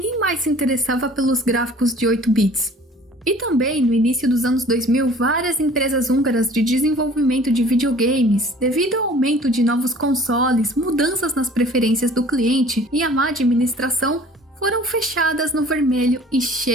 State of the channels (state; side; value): normal; both; correlation 0.50